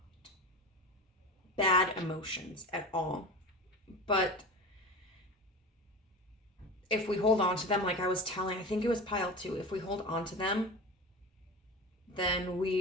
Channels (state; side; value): normal; both; correlation 0.30